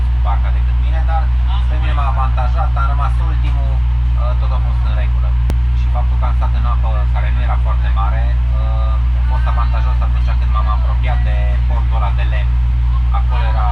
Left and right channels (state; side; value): identical; both; correlation 1.00